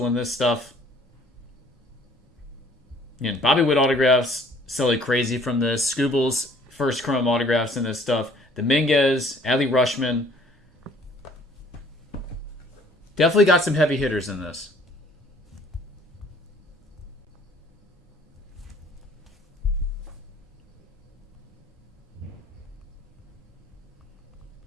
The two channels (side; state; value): both; normal; correlation 0.57